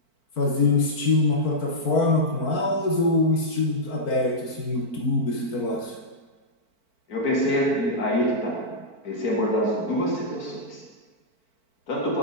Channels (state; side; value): late; right; 4.5 ms